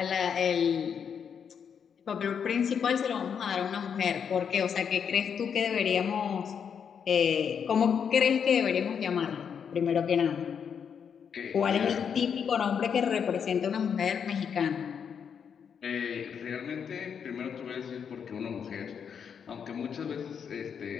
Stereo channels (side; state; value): right; quieter; 7.3 dB